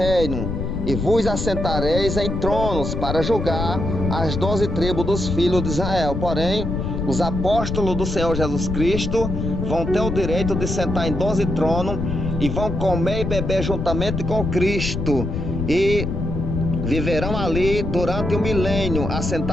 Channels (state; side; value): noise; left; rumble, 3 dB below the sound